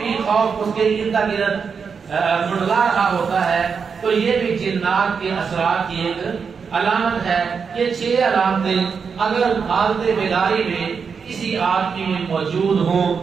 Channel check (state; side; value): quieter; left; 5.9 dB